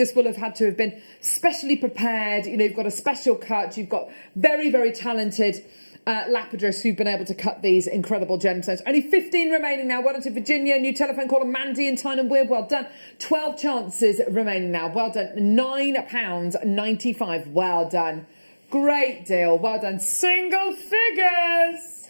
will have had to have been specially prepared. You know, you've got a special cut, you've got very, very talented lapidarists who've been able to cut these incredible gemstones. Only 15 remaining now. Well done to Virginia, new telephone caller Mandy in Tyne and Weir. Well done. 12 chances remaining now. Well done. £9.95. Well done. Great deal. Well done. Single figures.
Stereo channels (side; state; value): both; inverted; correlation -1.00